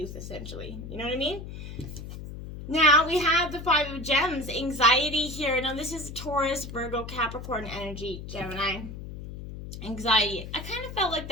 essentially. You know what I mean? Now, we have the Five of Gems, anxiety here. Now, this is Taurus, Virgo, Capricorn energy, Gemini. Anxiety. I kind of felt like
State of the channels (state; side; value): noise; left; hum, 10 dB below the sound